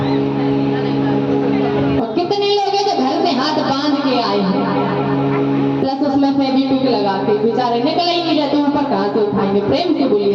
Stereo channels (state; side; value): identical; both; correlation 1.00